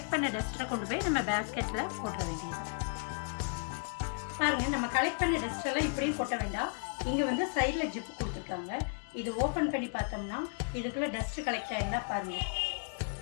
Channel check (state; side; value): silent; right; digital silence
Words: பண்ண டஸ்ட்டை கொண்டு போய் நம்ம பேஸ்கெட்டில் போட்ட வேண்டியது. பாருங்க, நம்ம கலெக்ட் பண்ண டஸ்ட் எல்லாம் இப்படியும் கொட்ட வேண்டாம். இங்க வந்து சைட்ல ஜிப் கொடுத்துருக்காங்க. இது ஓபன் பண்ணி பார்த்தோம்னா இதுக்குள்ள டஸ்ட் கலெக்ட் ஆயிருந்தா பாருங்க,